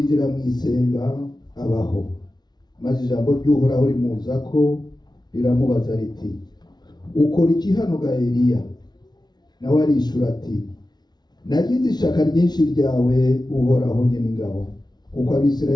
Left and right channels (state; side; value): late; right; 0.20 ms